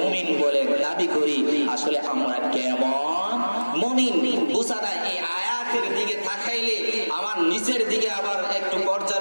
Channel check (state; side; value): inverted; both; correlation -1.00